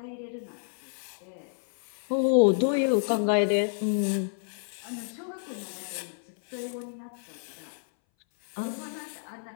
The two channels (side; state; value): right; silent; 58 dB below the other